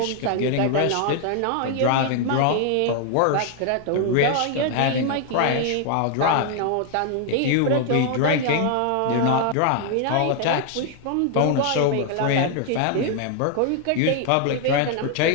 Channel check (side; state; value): both; different; correlation 0.00